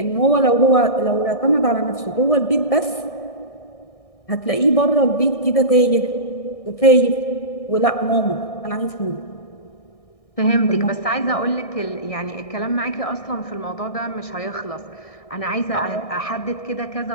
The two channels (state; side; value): late; right; 1.6 ms